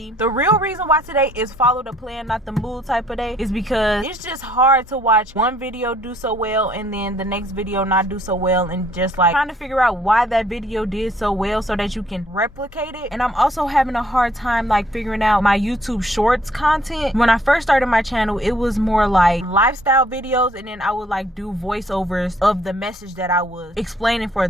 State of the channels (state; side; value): normal; both; correlation 0.64